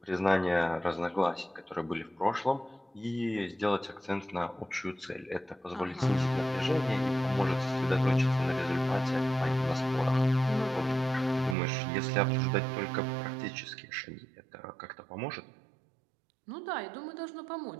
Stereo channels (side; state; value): left; drops out; at 11.6 s